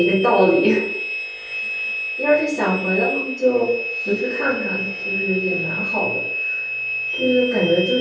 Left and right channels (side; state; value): both; identical; correlation 1.00